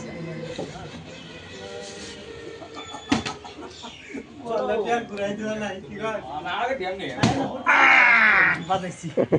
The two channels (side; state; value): both; identical; correlation 1.00